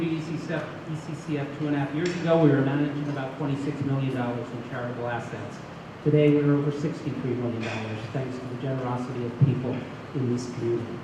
ECCF 2.5 years ago, we were managing about $26 million in charitable assets. Today, we're over $63 million, thanks to the generosity of people in this community.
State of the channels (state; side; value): identical; both; correlation 1.00